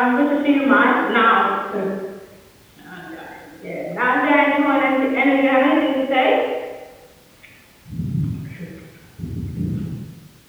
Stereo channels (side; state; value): both; identical; correlation 1.00